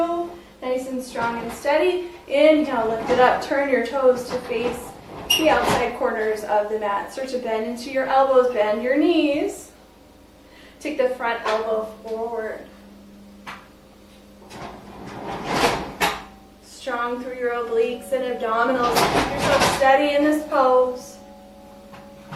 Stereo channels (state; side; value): identical; both; correlation 1.00